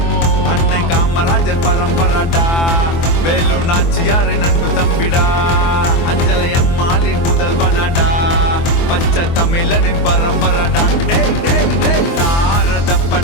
காமராஜர் பரம்பரடா வேலு நாச்சியாரின் அன்பு தம்பிடா அஞ்சலை அம்மாளின் முதல்வனடா பச்சை தமிழனின் பரம்பரடா டேய் டேய் டேய்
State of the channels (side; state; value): right; late; 24 ms